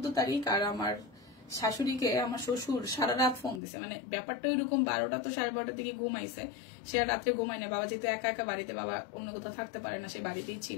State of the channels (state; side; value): drops out; right; at 3.6 s